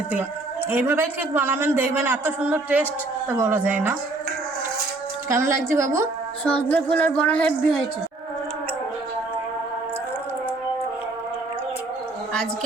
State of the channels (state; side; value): quieter; left; 3.1 dB